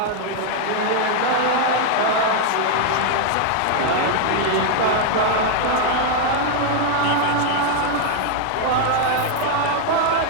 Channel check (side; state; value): both; different; correlation 0.00